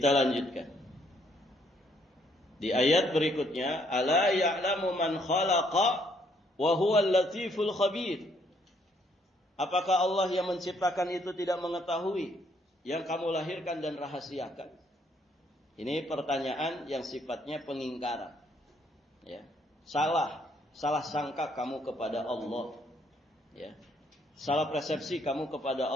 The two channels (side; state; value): both; normal; correlation 0.69